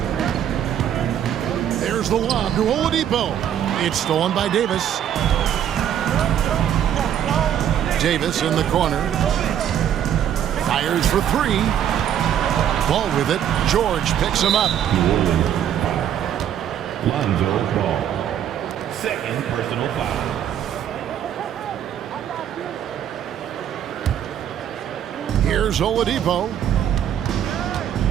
There's the lob to Oladipo. It's stolen by Davis. Davis in the corner. Fires for three. Ball with it. George picks him up. New Orleans. Lonzo Ball. Second personal foul. Here's Oladipo.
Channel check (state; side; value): quieter; left; 9.9 dB